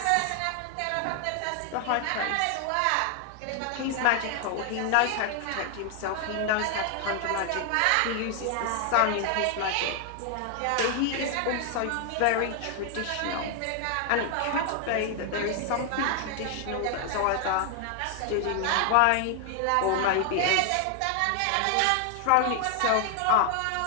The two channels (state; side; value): different; both; correlation 0.00